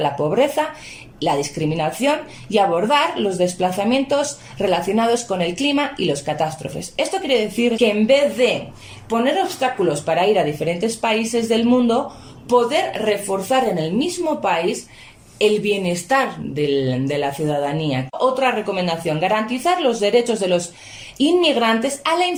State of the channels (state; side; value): identical; both; correlation 1.00